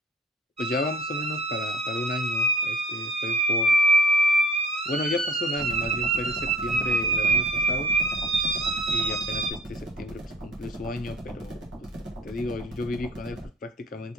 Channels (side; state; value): both; normal; correlation 0.52